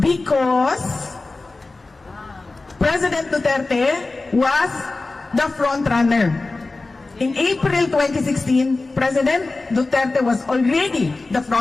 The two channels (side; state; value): right; quieter; 3.4 dB